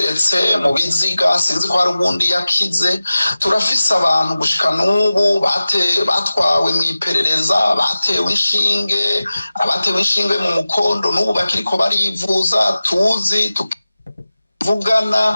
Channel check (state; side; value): inverted; both; correlation -0.96